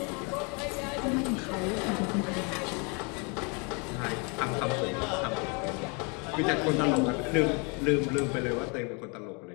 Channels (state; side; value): quieter; right; 33.4 dB